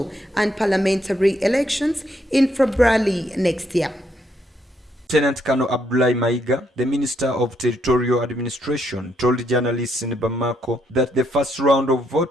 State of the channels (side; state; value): both; normal; correlation 0.74